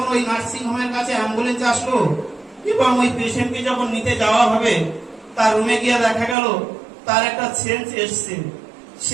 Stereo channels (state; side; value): drops out; left; at 6.4 s